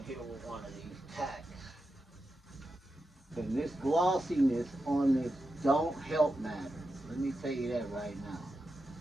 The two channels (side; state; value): both; normal; correlation 0.89